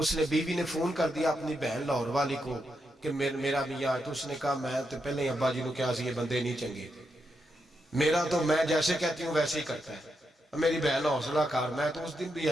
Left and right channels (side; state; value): both; normal; correlation 0.83